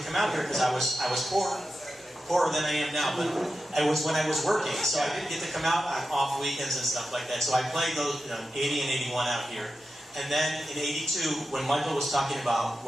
come out here because I was poorer than I am now, but it was when I was working, so I didn't get to come out on off weekends and stuff like that. So I played those 80 and 81 out here. And then in 82, when Michael was talking about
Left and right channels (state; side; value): normal; both; correlation 0.91